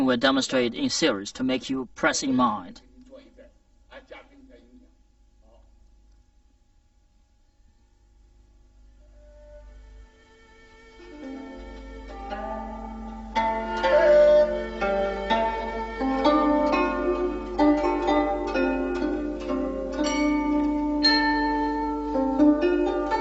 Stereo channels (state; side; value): identical; both; correlation 1.00